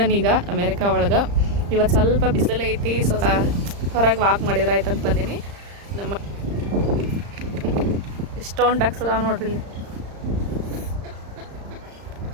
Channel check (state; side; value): late; left; 35 ms